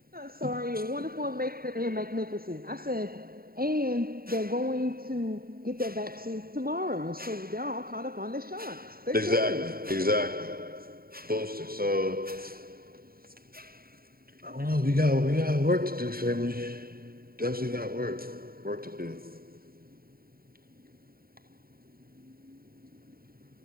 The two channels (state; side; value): late; left; 0.43 ms